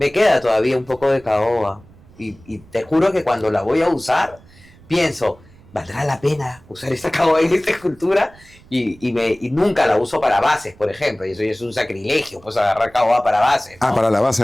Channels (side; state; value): right; noise; rumble, 25 dB below the sound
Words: queda todavía un poco de caoba. Y te juro que cuando la voy a usar, pienso, ¿valdrá la pena usar esta caoba en esta escultura? Y nunca la uso para bases, por ejemplo. Y eso es un sacrilegio, pues agarrar caoba para bases, ¿no? Para la base